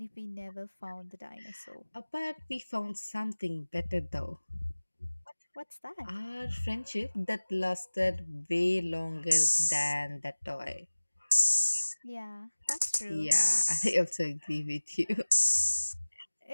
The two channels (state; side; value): inverted; both; correlation -1.00